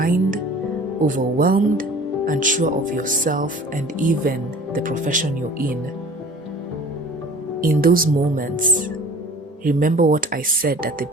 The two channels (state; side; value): normal; both; correlation 0.45